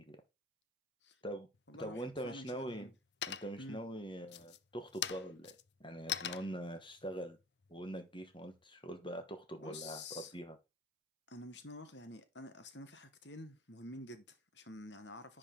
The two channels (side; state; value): both; normal; correlation 0.41